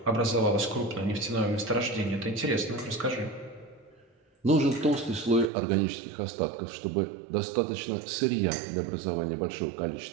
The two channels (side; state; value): left; drops out; at 5.5 s